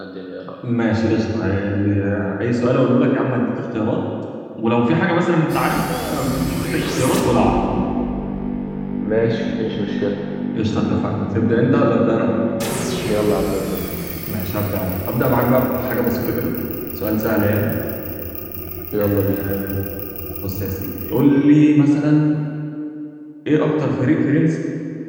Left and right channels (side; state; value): both; identical; correlation 1.00